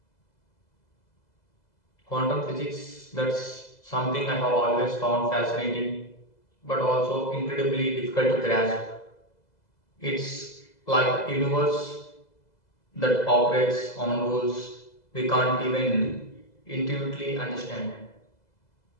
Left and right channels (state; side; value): late; right; 2.0 ms